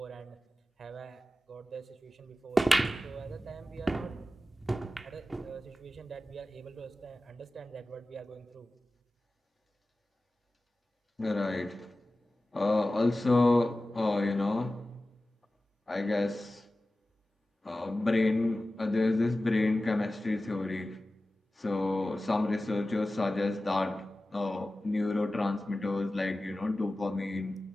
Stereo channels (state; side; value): normal; both; correlation 0.95